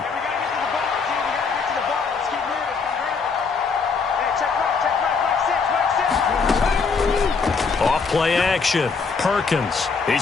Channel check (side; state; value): right; quieter; 5.0 dB